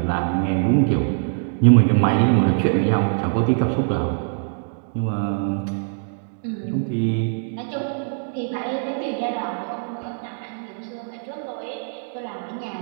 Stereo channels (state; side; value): silent; left; digital silence